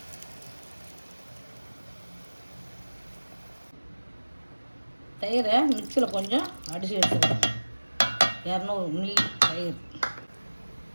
தயிரை மிக்சியில் கொஞ்சம் அடித்து வச்சுக்கிறேன். 200 மில்லி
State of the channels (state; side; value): inverted; both; correlation -1.00